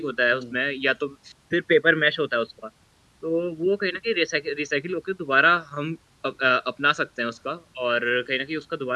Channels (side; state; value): both; identical; correlation 1.00